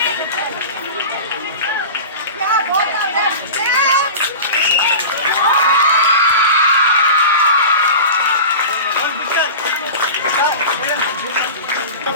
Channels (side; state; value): both; inverted; correlation -0.32